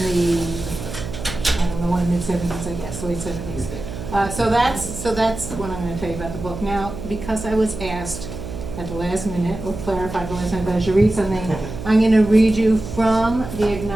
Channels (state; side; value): noise; right; hum, 9 dB below the sound